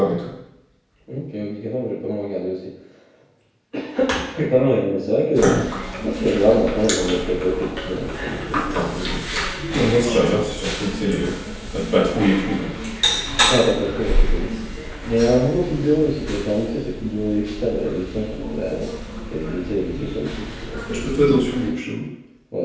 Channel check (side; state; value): both; identical; correlation 1.00